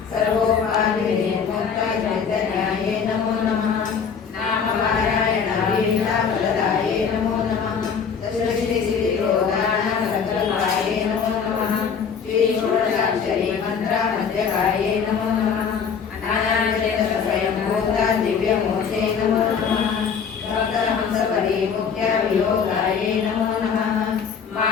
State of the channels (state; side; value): quieter; right; 6.5 dB